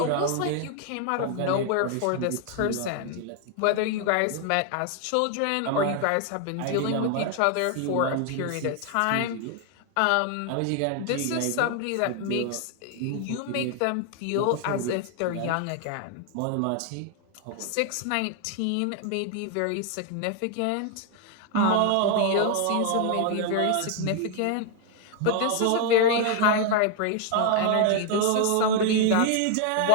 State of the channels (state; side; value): different; both; correlation 0.00